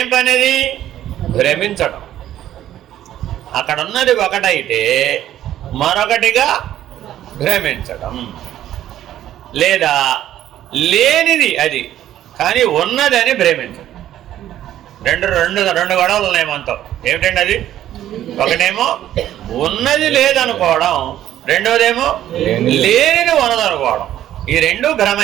పని? అది భ్రమించడం. అక్కడ ఉన్నది ఒకటైతే మరొకటిగా భ్రమించడం, లేదా లేనిది అది కానీ ఉన్నదని భ్రమించడం. రెండు గొడవలు ఉన్నాయి మనతో. ఏమిటండి అది? ఒకటేమో ఉన్నది లేదనుకోవడం, రెండోదేమో లేనిది ఉన్నదనుకోవడం. ఈ రెండు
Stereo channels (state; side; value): quieter; left; 12.2 dB